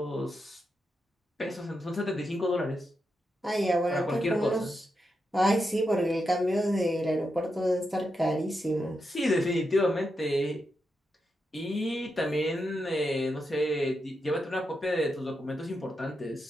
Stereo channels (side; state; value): both; normal; correlation 0.86